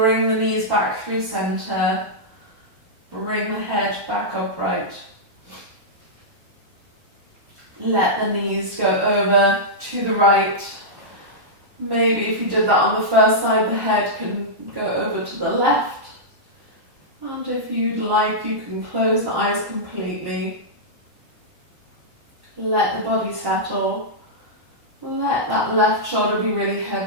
the knees back through center. Bring the head back upright. Let the knees go over to the right. Maybe if you did that on the first side, the head can go over to the left. And if you'd like, you can close the eyes completely. Let the body settle. Let that left shoulder be really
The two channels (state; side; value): late; left; 1.1 ms